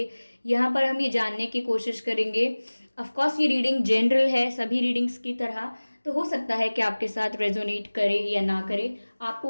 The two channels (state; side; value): inverted; both; correlation -1.00